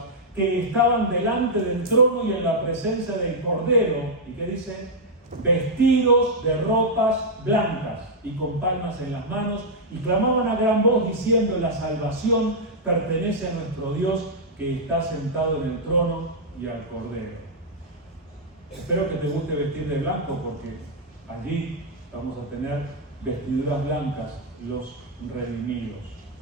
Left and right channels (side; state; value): both; normal; correlation -0.05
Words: que estaban delante del trono y en la presencia del Cordero. ¿Y qué dice? Vestidos de ropas blancas y con palmas en las manos, y clamaban a gran voz diciendo: la salvación pertenece a nuestro Dios, que está sentado en el trono y al Cordero. Espero que te guste vestir de blanco, porque allí vamos a tener vestiduras blancas, los redimidos.